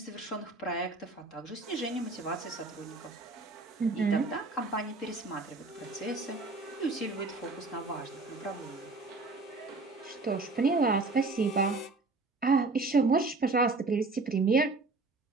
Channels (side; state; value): left; quieter; 3.5 dB